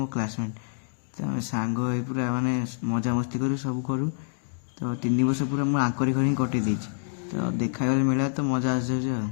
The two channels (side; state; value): right; silent; digital silence